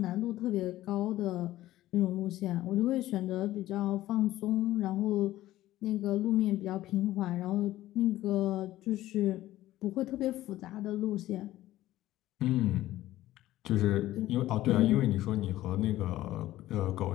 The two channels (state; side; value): quieter; right; 15.2 dB